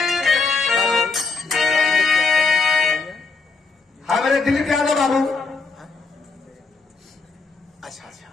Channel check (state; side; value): quieter; right; 4.2 dB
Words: हमारे दिलीप यादव बाबू अच्छा